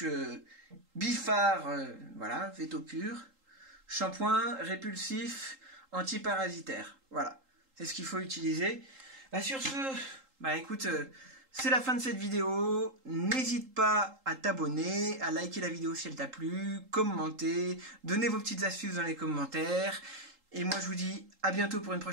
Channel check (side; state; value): left; late; 3.8 ms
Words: Bifar, voilà, Veto Pur, shampoing répulsif, antiparasitaire. Voilà, c'est ce qu'il faut utiliser. Bah, sur ce, bah écoute, c'est la fin de cette vidéo. N'hésite pas à t'abonner, à liker la vidéo si elle t'a plu, commenter, donner vos petites astuces dans les commentaires. Et moi je vous dis à bientôt pour une